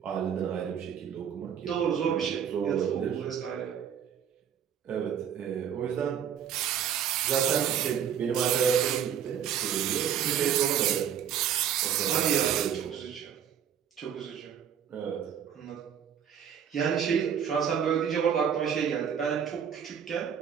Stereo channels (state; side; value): quieter; left; 8.6 dB